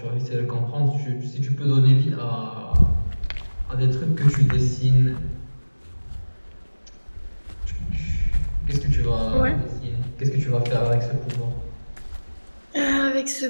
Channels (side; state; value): both; inverted; correlation -1.00